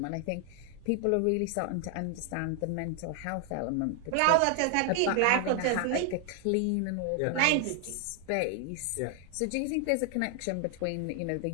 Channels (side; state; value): both; different; correlation 0.00